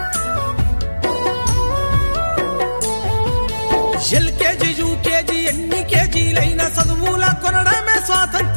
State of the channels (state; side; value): inverted; both; correlation -1.00